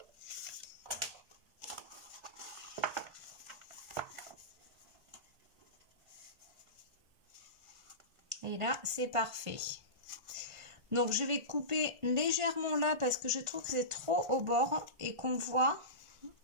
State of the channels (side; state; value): left; late; 1.6 ms